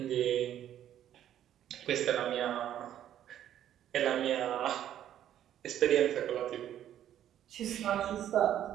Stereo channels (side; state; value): left; quieter; 11.1 dB